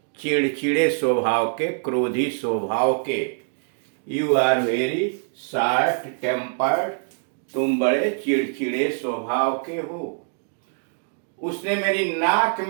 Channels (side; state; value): left; silent; digital silence